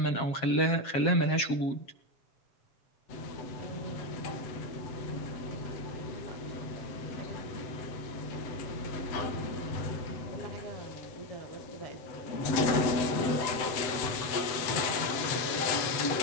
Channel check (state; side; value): late; right; 7.9 ms